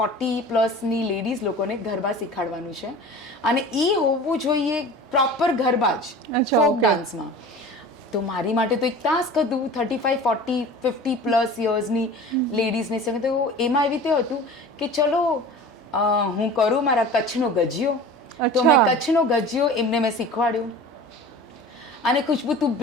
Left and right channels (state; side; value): normal; both; correlation 0.39